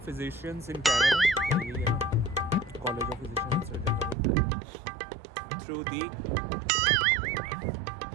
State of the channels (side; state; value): left; drops out; at 4.2 s